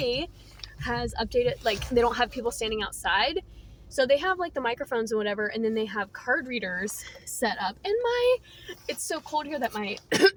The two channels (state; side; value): identical; both; correlation 1.00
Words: has updated, like, they don't have people standing outside, so they have like the microphones and whatever, and then they have card readers set up, and it's so cold here that my